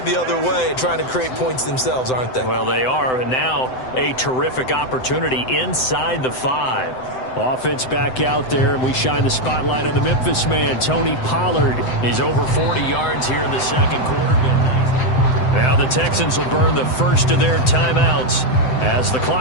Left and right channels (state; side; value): late; right; 7.8 ms